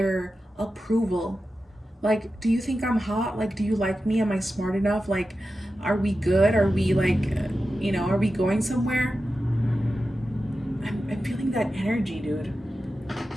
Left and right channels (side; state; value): both; normal; correlation 0.92